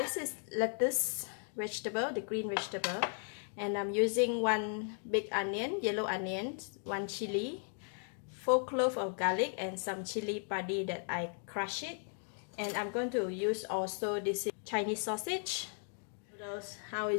is lettuce vegetable, the green vegetable, and I'm using 1 big onion, yellow onion, 1 chili, 4 cloves of garlic, and some chili padi that I crush it. And I'm going to use also this Chinese sausage. Noodles, how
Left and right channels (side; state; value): right; silent; 54 dB below the other